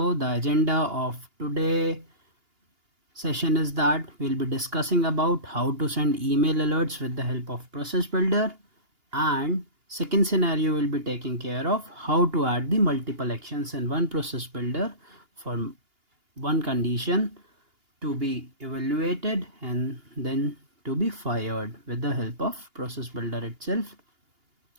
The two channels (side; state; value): left; late; 2.8 ms